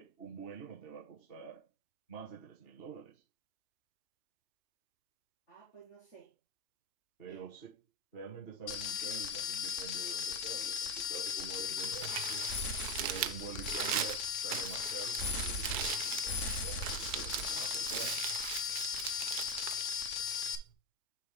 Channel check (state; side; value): late; right; 2.3 ms